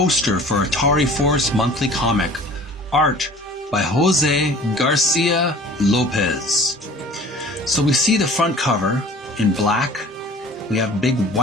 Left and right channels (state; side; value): normal; both; correlation 0.46